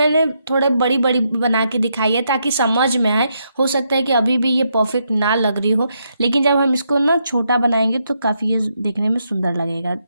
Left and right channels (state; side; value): inverted; both; correlation -0.79